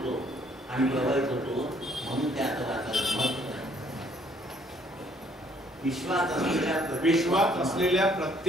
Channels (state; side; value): normal; both; correlation 0.63